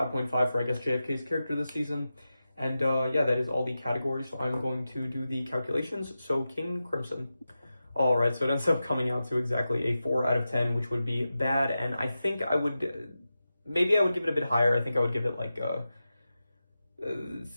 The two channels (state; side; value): inverted; both; correlation -0.92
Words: for, I guess, JFK's character this season. And yeah, that is all the categories. So I'm going to do the calculations. So King Crimson. All right, so it ends up coming out to exactly a 4 out of 10, which would be bad. And I think I would, maybe I would give it a bit higher. I think I would give it like,